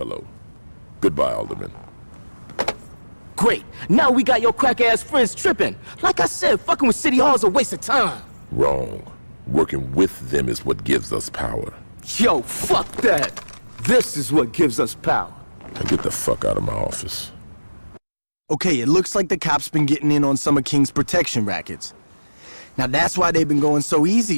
Goodbye, Alderman. Great. Now we got your crack-ass friends tripping. Like I said, fucking with City Hall's a waste of time. Wrong. Working with them is what gives us power. Yo, fuck that. This is what gives us power. Now get the fuck out of my office. Okay, it looks like the cops been getting in on some of King's protection rackets. Now that's why they've been going so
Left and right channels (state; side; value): inverted; both; correlation -1.00